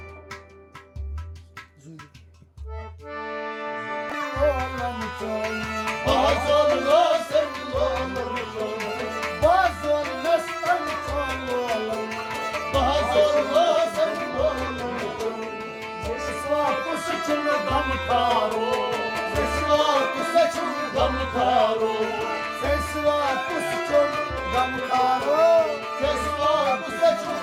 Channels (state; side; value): identical; both; correlation 1.00